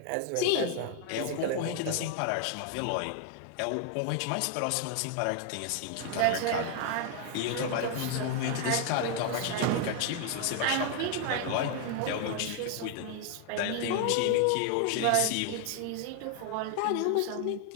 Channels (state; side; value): different; both; correlation 0.00